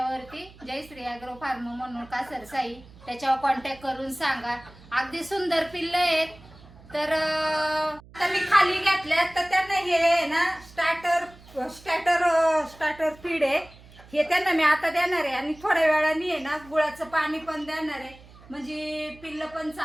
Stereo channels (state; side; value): noise; right; hum, 22 dB below the sound